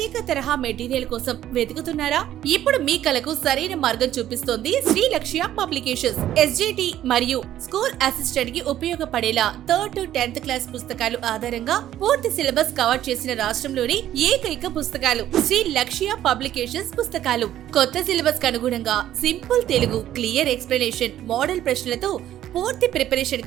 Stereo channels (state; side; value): quieter; left; 12.2 dB